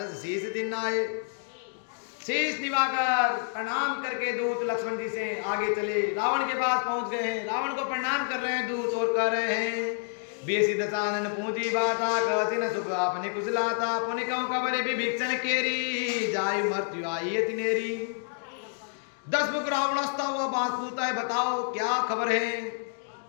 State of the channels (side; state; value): right; silent; digital silence